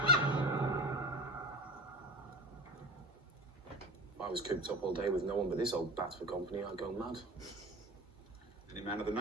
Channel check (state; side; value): normal; both; correlation 0.31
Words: If I was cooped up all day with no one but this old bat for company, I'd go mad. Any man of the